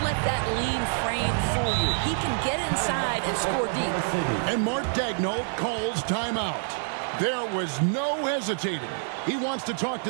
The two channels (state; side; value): silent; left; 60 dB below the other